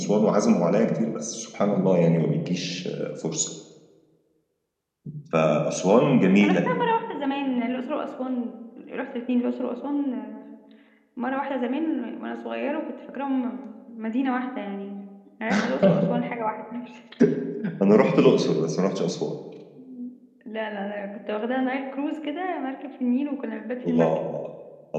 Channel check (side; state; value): both; identical; correlation 1.00